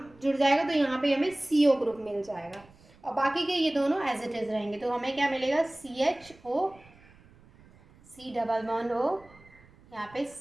जुड़ जाएगा तो यहाँ पे हमें CO ग्रुप मिल जाएगा, और बाकी के ये दोनों एज इट इज रहेंगे. तो हमें क्या मिलेगा, CHO, C double bond O, यहाँ पे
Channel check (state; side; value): noise; right; rumble, 26 dB below the sound